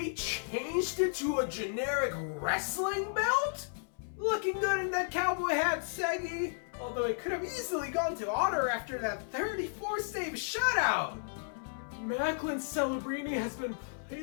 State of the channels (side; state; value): right; silent; 55 dB below the other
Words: changed it to a generic wrestling belt? Looking good in that cowboy hat, Seggy. Although it could have easily gone to Otter after that 34 save shutout. Macklin Celebrini has been